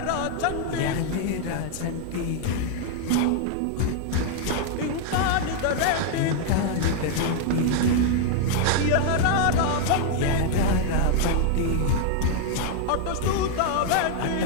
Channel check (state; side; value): different; both; correlation 0.00